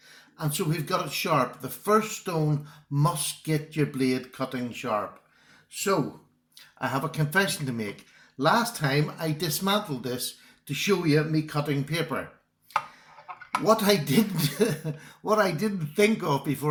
And so we've got it sharp. The first stone must get your blade cutting sharp. So, I have a confession to make. Last time I dismantled this to show you me cutting paper. What I didn't think of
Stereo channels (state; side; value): identical; both; correlation 1.00